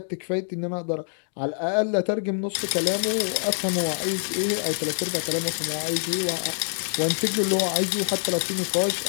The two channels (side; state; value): right; silent; digital silence